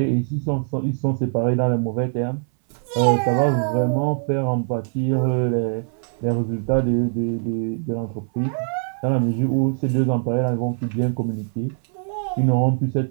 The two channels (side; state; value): left; silent; 60 dB below the other